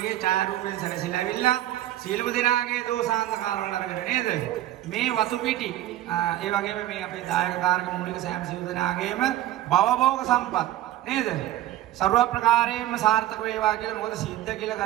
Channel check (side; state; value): left; quieter; 14.0 dB